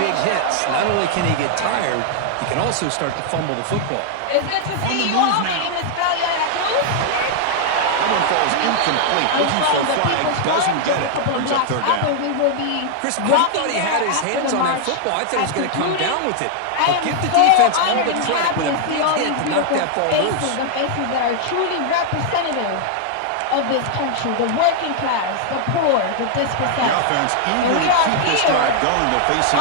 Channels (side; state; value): both; different; correlation 0.00